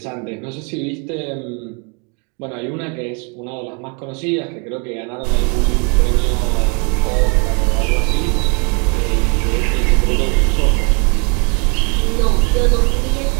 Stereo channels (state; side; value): quieter; left; 35.7 dB